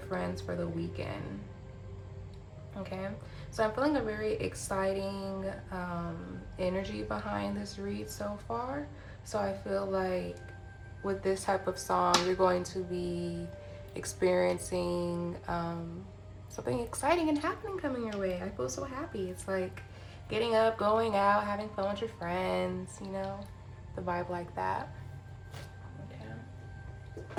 for the weekend. Okay, so I'm feeling a very exciting energy behind this read so far. So I feel like with this type of song, you're going to be experiencing something exciting and happening coming your way. I feel so happy. It's like getting up, going out, having fun with your friends, you know, the vibe like that.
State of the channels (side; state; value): both; identical; correlation 1.00